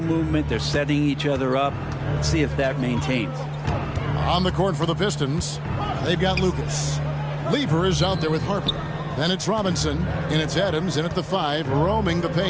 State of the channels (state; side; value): identical; both; correlation 1.00